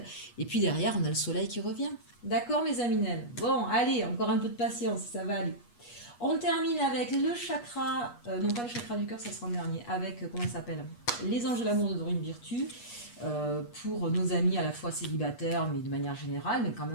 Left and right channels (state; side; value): late; right; 8.3 ms